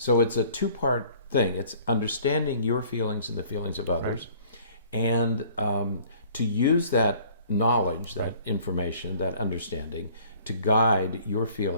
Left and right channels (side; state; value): both; inverted; correlation -0.54